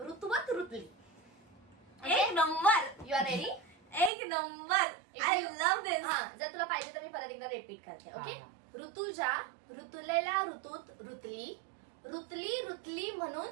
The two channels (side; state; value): left; drops out; at 4.1 s